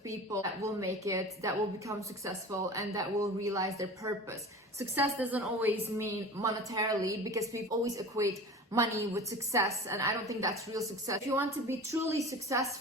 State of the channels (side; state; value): both; normal; correlation 0.36